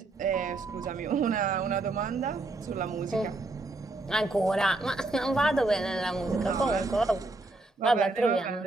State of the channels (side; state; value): left; quieter; 3.1 dB